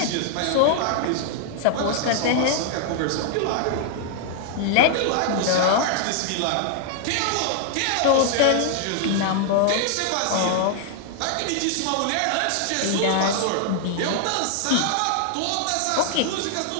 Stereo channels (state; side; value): different; both; correlation 0.00